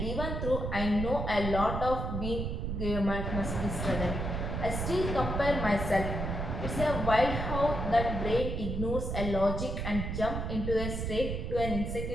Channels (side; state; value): right; noise; rumble, 3 dB below the sound